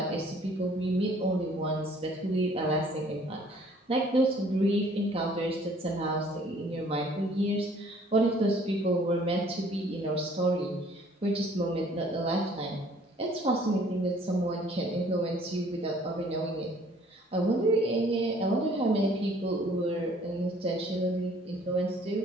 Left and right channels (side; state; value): both; normal; correlation 0.57